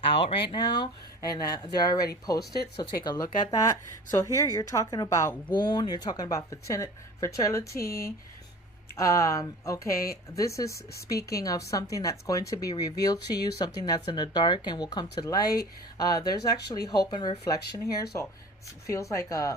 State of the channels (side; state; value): both; normal; correlation 0.40